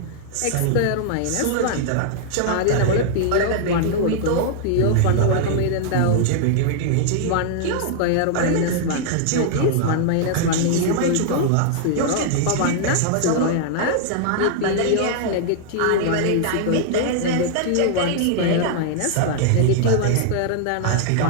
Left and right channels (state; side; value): different; both; correlation -0.01